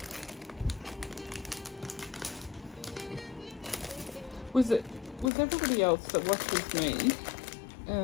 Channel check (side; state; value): right; drops out; at 5.3 s